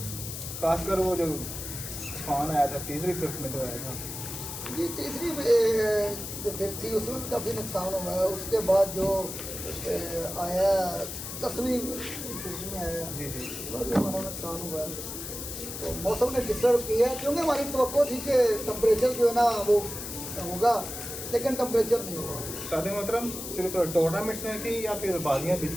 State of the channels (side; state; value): left; noise; hiss, 8 dB below the sound